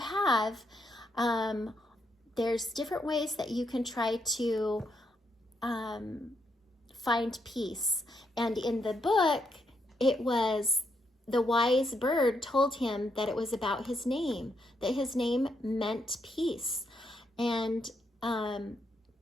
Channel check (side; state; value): both; normal; correlation 0.78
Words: there's different ways that you can try to find peace. And in the book, it was the wise bird told him that it was about his name, that his name meant peace. And I